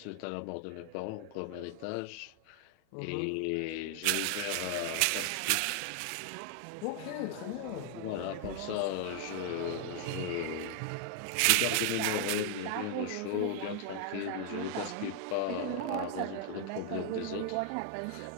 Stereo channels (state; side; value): different; both; correlation 0.00